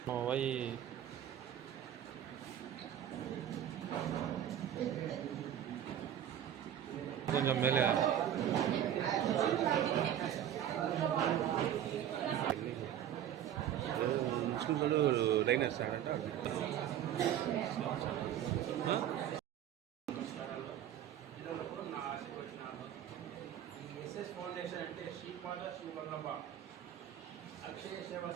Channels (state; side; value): quieter; left; 10.6 dB